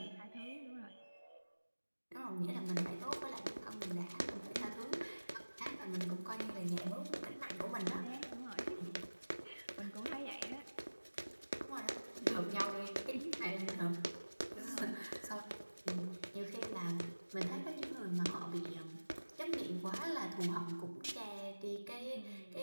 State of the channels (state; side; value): inverted; both; correlation -1.00